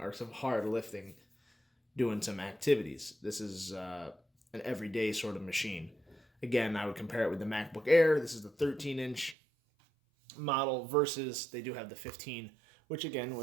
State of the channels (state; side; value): drops out; left; at 9.3 s